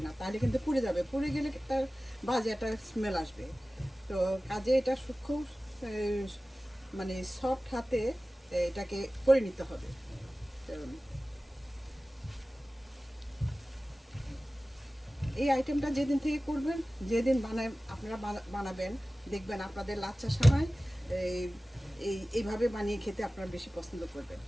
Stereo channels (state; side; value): normal; both; correlation 0.97